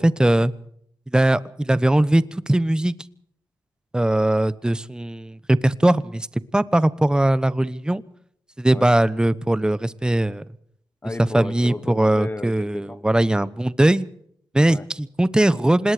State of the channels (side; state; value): both; normal; correlation 0.98